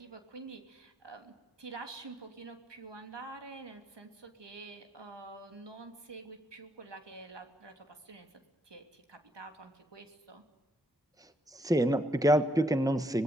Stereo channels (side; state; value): both; normal; correlation 0.75